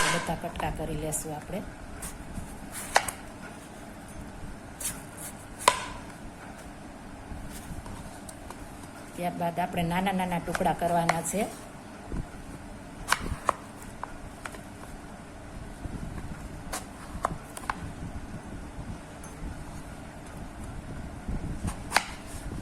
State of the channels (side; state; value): both; identical; correlation 1.00